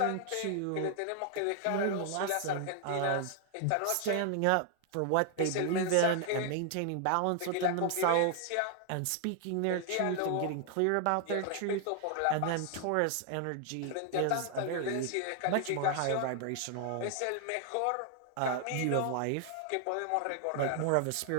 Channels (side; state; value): both; different; correlation 0.00